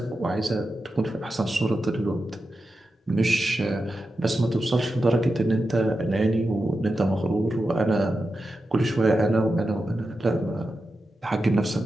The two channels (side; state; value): both; normal; correlation 0.90